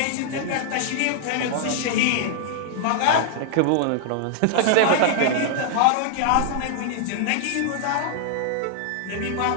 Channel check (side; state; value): both; different; correlation -0.01